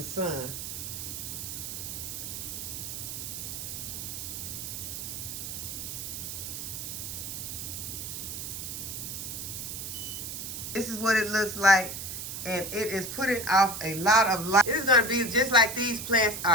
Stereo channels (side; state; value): right; noise; hiss, 6 dB below the sound